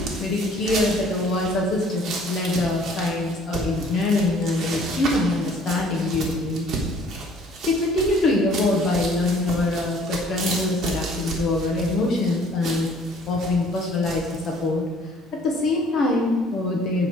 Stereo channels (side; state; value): both; normal; correlation 0.56